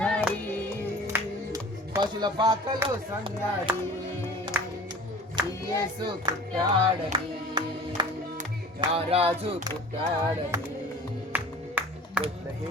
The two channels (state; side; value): normal; both; correlation 0.43